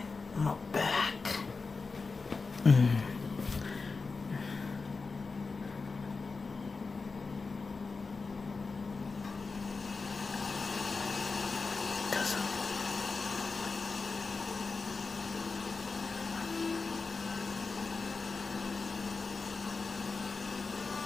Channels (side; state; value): right; quieter; 4.3 dB